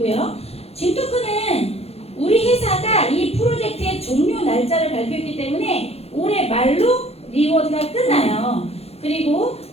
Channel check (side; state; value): right; late; 0.29 ms